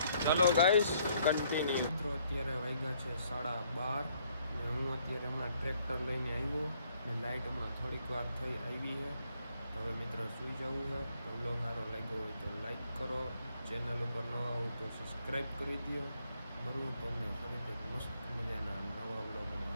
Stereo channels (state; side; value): inverted; both; correlation -0.68